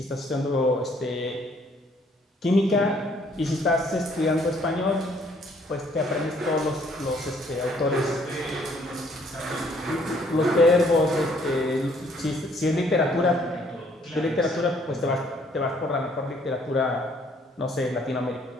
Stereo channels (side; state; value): both; normal; correlation 0.63